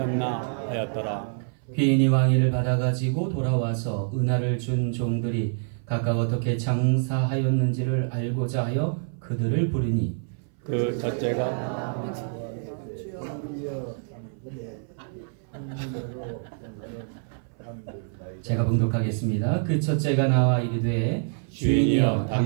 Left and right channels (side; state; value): left; silent; 61 dB below the other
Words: 하였더라. 귀인이 왕위를 받아가지고 돌아와서 은하를 준 종들이 각각 어떻게 장사하였는지를 알고자 하여 그들을 부르니 그 첫째가 제가 봉독하겠습니다. 그 첫째가 나와 이르되 주인이여